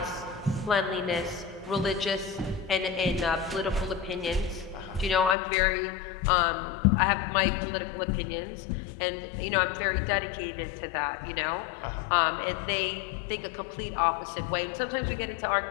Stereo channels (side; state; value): right; drops out; at 5.4 s